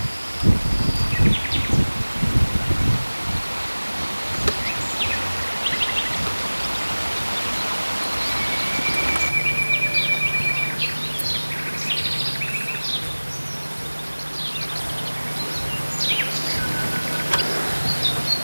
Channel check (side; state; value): both; inverted; correlation -1.00